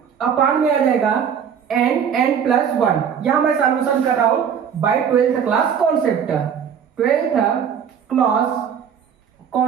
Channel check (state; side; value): quieter; left; 7.7 dB